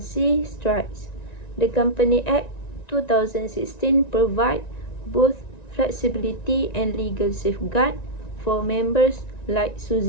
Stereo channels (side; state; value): right; late; 1.9 ms